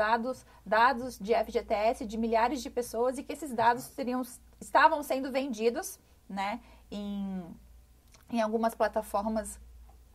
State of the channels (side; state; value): both; identical; correlation 1.00